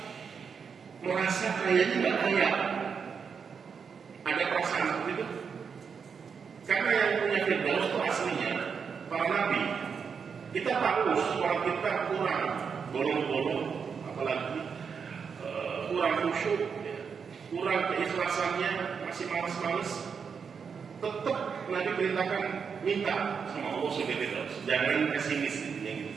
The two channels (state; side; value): quieter; left; 6.2 dB